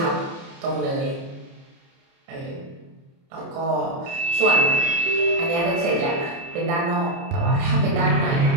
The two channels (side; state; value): left; late; 30 ms